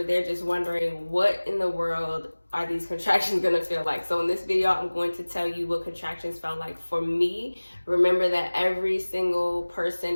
they're just wondering, what in the world are these contractions gonna feel like? So in this video, I'm going to tell you what contractions felt like for me. Remember that every single person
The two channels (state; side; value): inverted; both; correlation -1.00